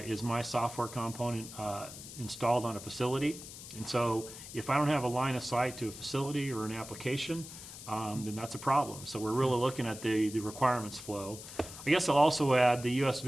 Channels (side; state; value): left; noise; hiss, 13 dB below the sound